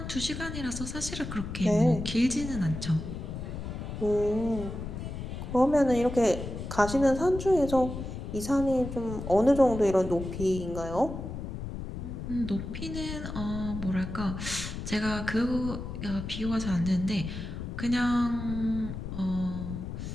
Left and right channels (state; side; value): noise; left; rumble, 7 dB below the sound